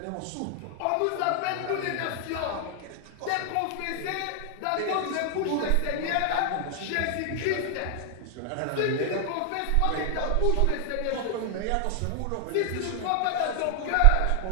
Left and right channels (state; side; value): different; both; correlation 0.00